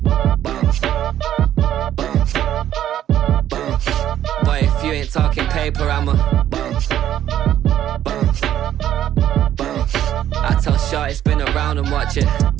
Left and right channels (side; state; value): left; quieter; 11.4 dB